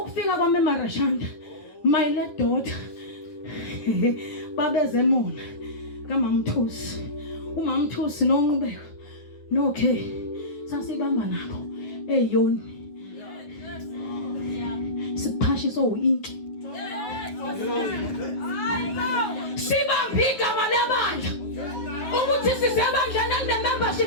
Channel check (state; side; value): late; right; 9.3 ms